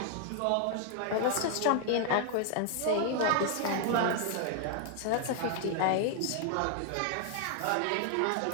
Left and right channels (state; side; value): different; both; correlation 0.00